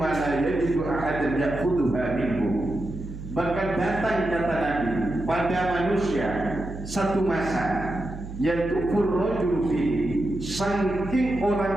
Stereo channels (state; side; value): noise; right; hum, 10 dB below the sound